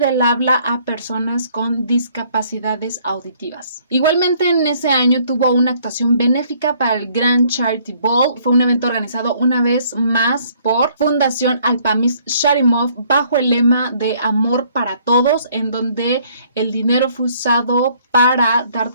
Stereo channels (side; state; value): both; inverted; correlation -0.62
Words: habla a personas con discapacidades auditivas. Igualmente en ese año tuvo una actuación benéfica para el Grand Charity Ball. Fue un evento organizado una vez más por Fundación Alpamis Sharimov bajo el lema de Amor para Todos, en donde el dinero fue usado para dar